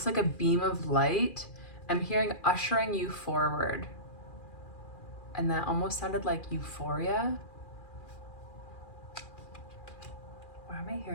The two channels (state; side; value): late; right; 2.4 ms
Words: like a beam of light. I'm hearing ushering you forward. And that almost sounded like euphoria. Why am I